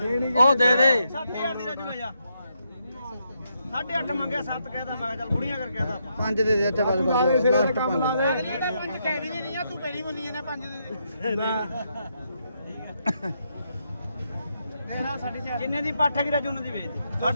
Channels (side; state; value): both; inverted; correlation -0.80